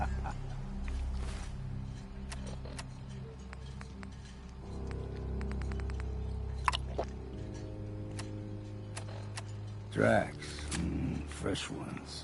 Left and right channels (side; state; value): both; identical; correlation 1.00